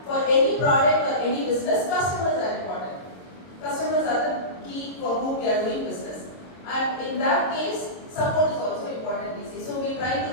for any product or any business, customers are important. Customers are the key for whom we are doing business, and in that case, support is also important. We see. So we try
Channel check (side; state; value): right; late; 22 ms